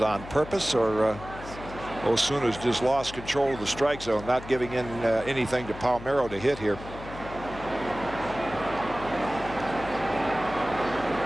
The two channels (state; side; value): noise; left; hum, 13 dB below the sound